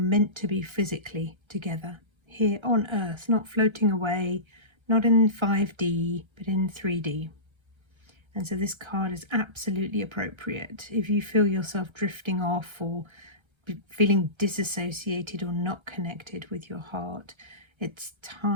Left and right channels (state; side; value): late; left; 1.3 ms